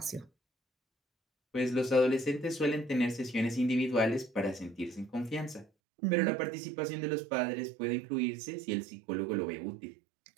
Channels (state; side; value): drops out; left; at 5.7 s